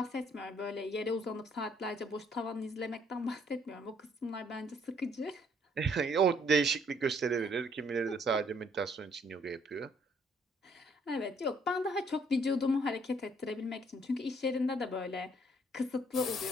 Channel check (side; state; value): both; normal; correlation 0.65